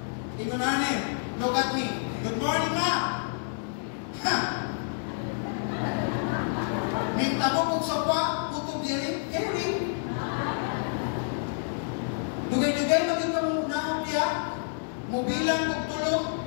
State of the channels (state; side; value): silent; right; 59 dB below the other